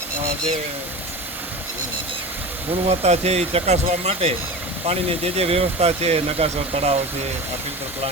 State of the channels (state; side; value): normal; both; correlation 0.30